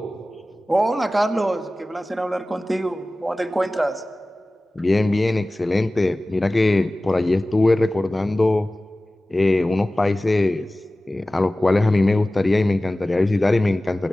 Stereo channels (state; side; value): normal; both; correlation 0.97